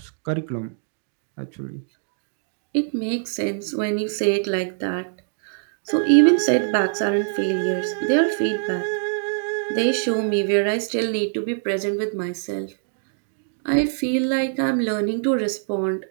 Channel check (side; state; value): left; silent; digital silence